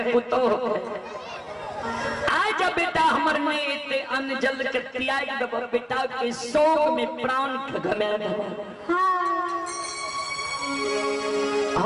पुतो आज बेटा हमर में अन्न जल के त्याग दब, बेटा के शोक में प्राण घमे।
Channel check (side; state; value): both; identical; correlation 1.00